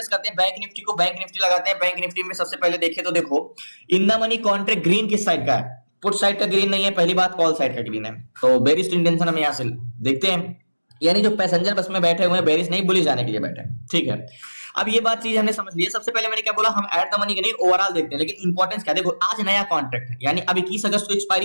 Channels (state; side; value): inverted; both; correlation -1.00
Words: करते हैं बैंक निफ्टी को, बैंक निफ्टी लगाते हैं। बैंक निफ्टी में सबसे पहले देखें तो देखो, in the money contract green किस साइड का है, पुट साइड का ग्रीन नहीं है, पहली बात कॉल साइड का ग्रीन है। तो बेरिश इंटेंशन हम यहां से देखते हैं, यानी जो पैसेंजर बस में बैठे हुए हैं बेरिश नहीं, बुलिश जाने के लिए बैठे हैं। ठीक है, अब ये बात चीज हमने समझ ली है। सबसे पहले मैंने क्या बोला, हम ऐड द मनी के नहीं ओवरऑल देखते हैं, लेकिन इंपॉर्टेंस क्या, देखो आज नया कॉन्ट्रैक्ट है, यानी अब 21 अगस्त को